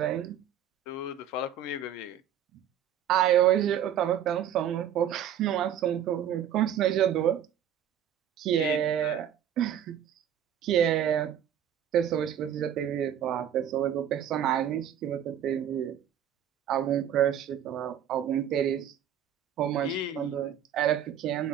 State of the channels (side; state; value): left; quieter; 9.4 dB